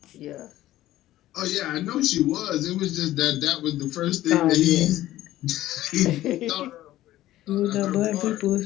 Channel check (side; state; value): right; quieter; 14.8 dB